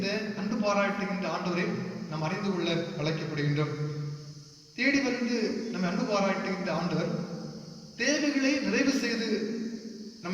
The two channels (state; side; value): identical; both; correlation 1.00